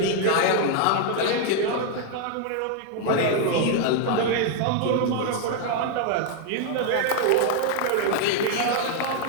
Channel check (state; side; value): different; both; correlation 0.00